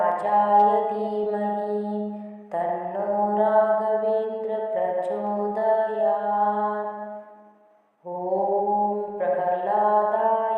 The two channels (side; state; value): both; identical; correlation 1.00